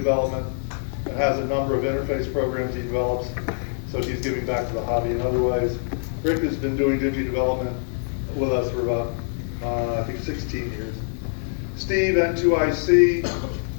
and has a number of interface programs he develops, so he's giving back to the hobby in other ways. Rick has been doing Digi development with us for about, I think 16 years. Steve, N2IC,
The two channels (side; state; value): right; silent; 62 dB below the other